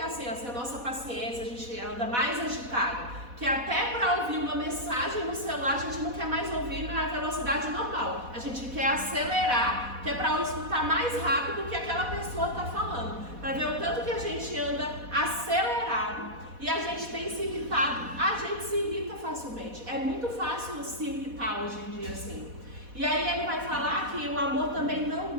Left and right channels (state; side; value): late; left; 4.1 ms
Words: assim, a nossa paciência, a gente anda mais agitado. que até para ouvir uma mensagem no celular a gente não quer mais ouvir na velocidade normal. A gente quer acelerar, que é para escutar mais rápido do que aquela pessoa está falando. Para ver o tanto que a gente anda acelerado e a gente tem se irritado. A gente se irrita facilmente. É muito fácil se irritar hoje em dia assim. E aí ele vai falar que o amor também não